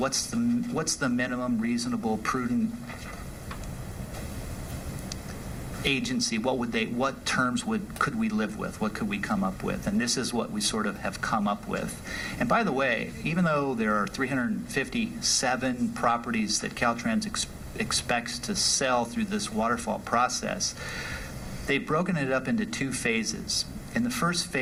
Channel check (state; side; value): identical; both; correlation 1.00